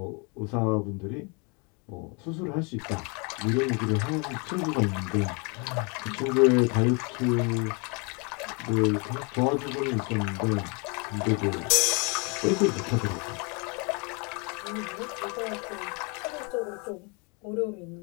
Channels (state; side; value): quieter; right; 32.6 dB